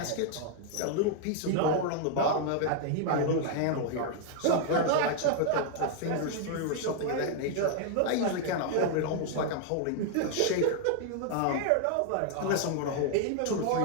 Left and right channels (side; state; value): both; different; correlation 0.00